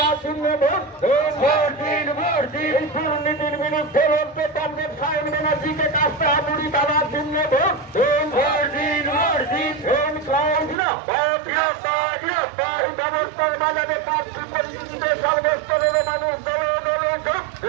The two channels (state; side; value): drops out; left; at 10.8 s